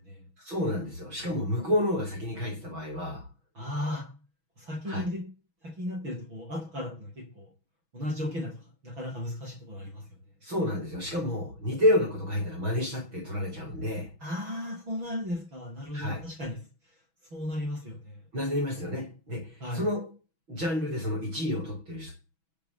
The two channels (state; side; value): late; left; 6.1 ms